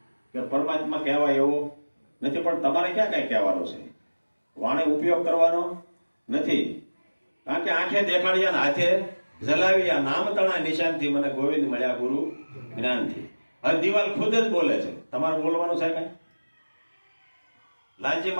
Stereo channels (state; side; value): inverted; both; correlation -1.00